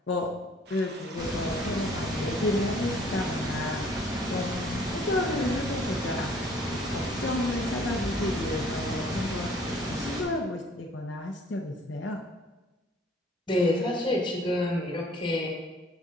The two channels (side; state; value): both; normal; correlation 0.57